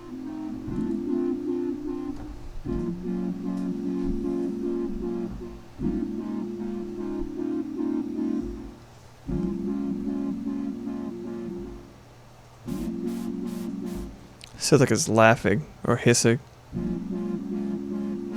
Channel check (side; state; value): both; identical; correlation 1.00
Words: Sounds like it's laughing or hissing.